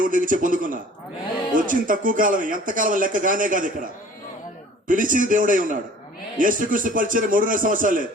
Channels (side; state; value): both; normal; correlation 0.49